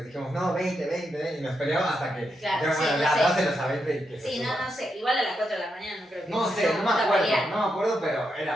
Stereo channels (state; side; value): normal; both; correlation 0.83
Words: dijimos, no, 20, y nos peleamos hasta que claro, sí, ya dáselos a 20 y que se sí, suba. no sé, igual a las 4 de la mañana no creo que... No sé, no me acuerdo, pero